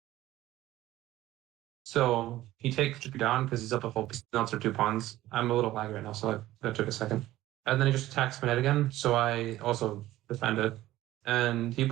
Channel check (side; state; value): left; quieter; 15.4 dB